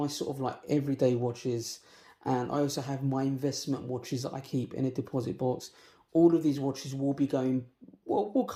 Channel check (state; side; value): identical; both; correlation 1.00